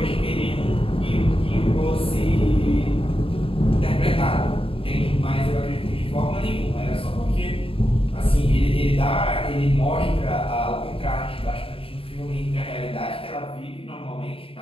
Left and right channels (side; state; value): right; late; 0.27 ms